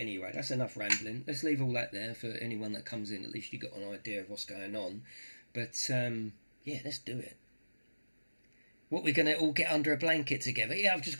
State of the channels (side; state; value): both; inverted; correlation -1.00